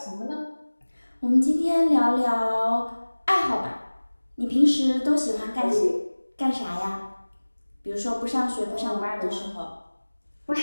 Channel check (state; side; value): inverted; both; correlation -1.00